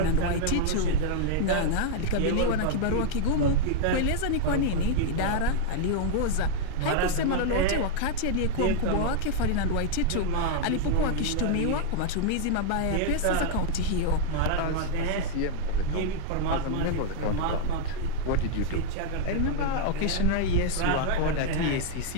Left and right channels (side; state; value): both; different; correlation 0.00